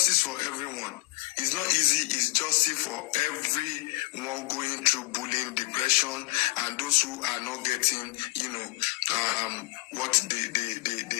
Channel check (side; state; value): right; quieter; 23.1 dB